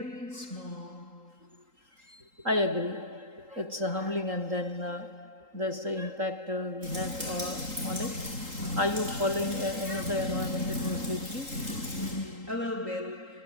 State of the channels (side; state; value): left; late; 3.8 ms